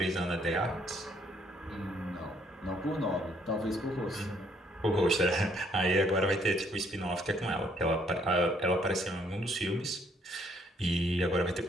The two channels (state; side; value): normal; both; correlation 0.67